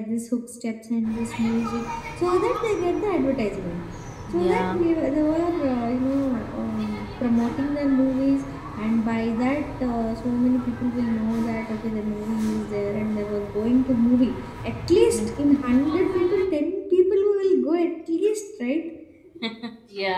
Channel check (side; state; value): both; identical; correlation 1.00